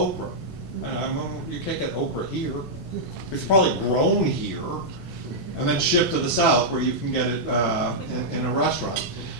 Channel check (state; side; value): normal; both; correlation -0.08